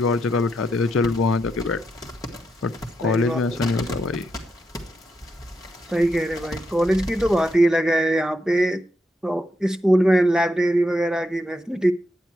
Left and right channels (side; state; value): both; normal; correlation 0.82